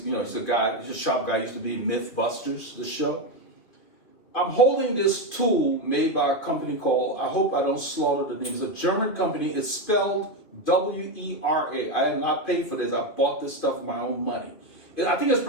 a shop guy, used to be in Mythbusters, the show. I'm holding this tool made by a company called, I hope I don't slaughter the name, it's a German company. It's spelled W-E-R-A. I have not paid for this. I bought this stuff with my own money. I think it's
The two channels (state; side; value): late; right; 2.6 ms